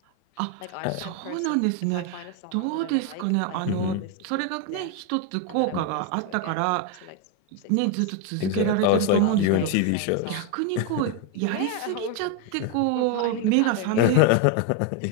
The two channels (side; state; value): both; different; correlation 0.02